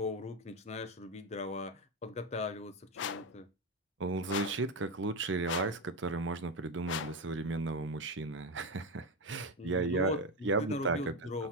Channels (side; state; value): both; normal; correlation 0.13